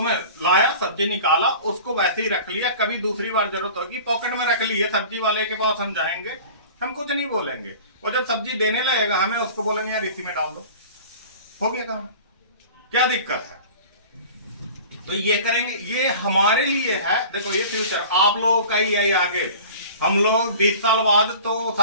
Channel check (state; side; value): inverted; both; correlation -0.41